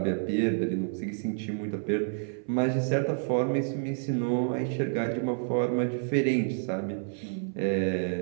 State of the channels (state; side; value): silent; left; 56 dB below the other